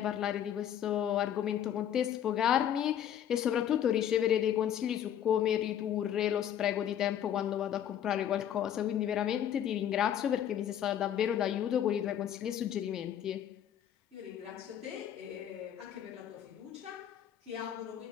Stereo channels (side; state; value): right; quieter; 10.1 dB